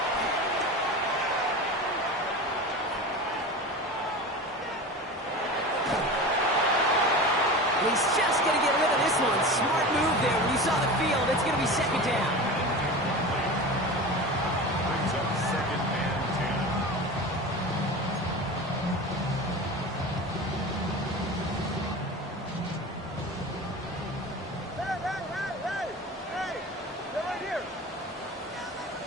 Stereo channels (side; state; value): both; normal; correlation 0.31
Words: He's just going to get rid of this one. Smart move there. When you saw the field, it's going to be 2nd down. Brings up 2nd and 10. Hey! They're right here.